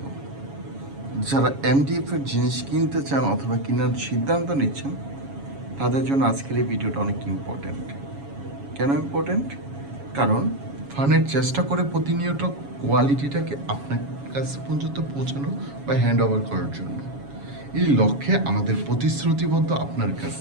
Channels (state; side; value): late; left; 7.2 ms